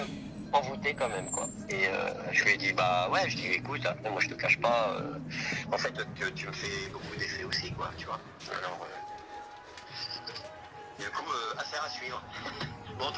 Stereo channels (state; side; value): identical; both; correlation 1.00